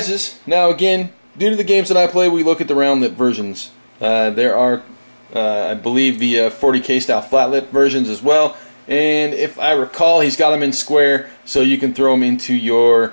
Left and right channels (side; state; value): both; inverted; correlation -1.00